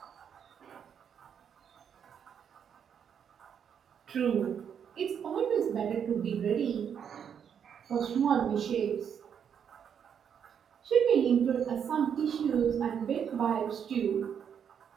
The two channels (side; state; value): left; quieter; 7.9 dB